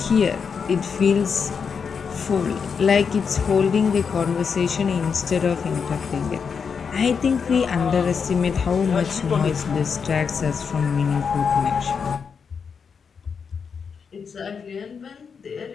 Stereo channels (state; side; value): quieter; right; 6.1 dB